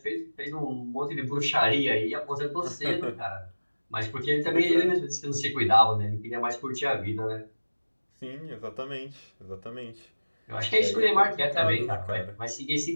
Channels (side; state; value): both; inverted; correlation -1.00